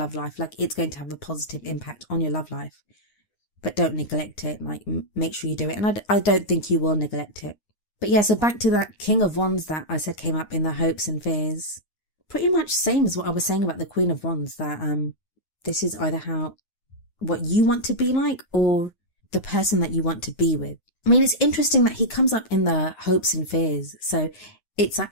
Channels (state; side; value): late; right; 9.6 ms